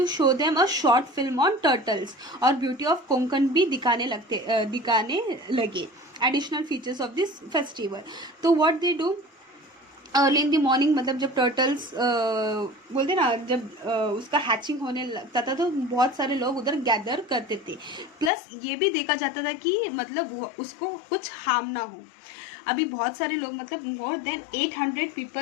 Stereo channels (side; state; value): right; drops out; at 18.3 s